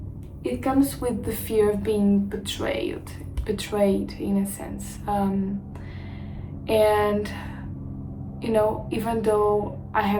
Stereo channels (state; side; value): identical; both; correlation 1.00